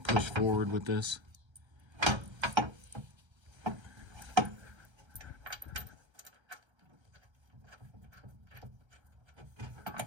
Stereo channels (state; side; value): late; left; 1.3 ms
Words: push forward with this.